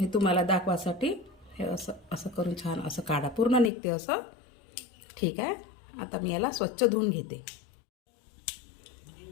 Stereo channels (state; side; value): drops out; right; at 3.7 s